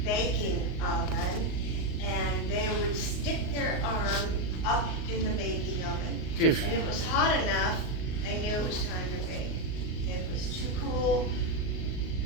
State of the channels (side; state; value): right; late; 38 ms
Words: baking oven, and they would stick their arm up in the baking oven. Phew. And it was hot enough, they knew it was time to bake. If it was too cool